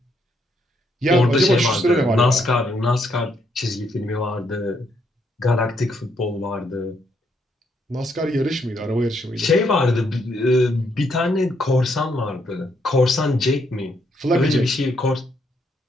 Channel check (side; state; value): both; normal; correlation 0.74